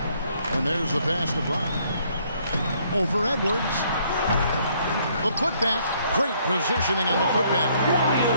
And there's the pass to Brown. Over Edwards. The putback. Great positioning on the putback.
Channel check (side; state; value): both; inverted; correlation -0.66